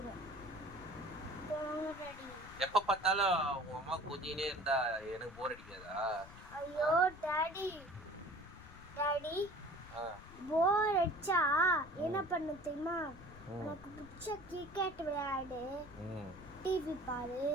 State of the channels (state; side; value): noise; left; rumble, 17 dB below the sound